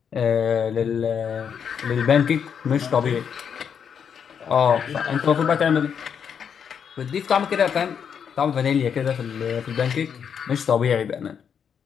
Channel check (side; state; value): right; quieter; 7.5 dB